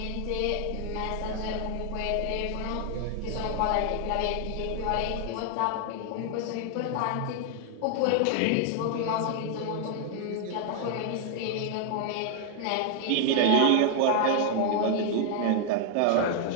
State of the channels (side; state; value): both; different; correlation 0.00